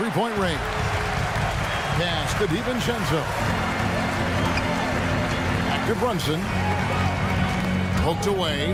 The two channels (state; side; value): identical; both; correlation 1.00